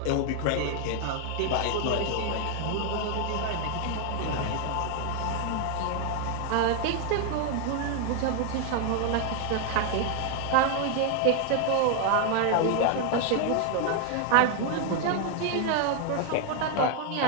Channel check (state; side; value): different; both; correlation 0.01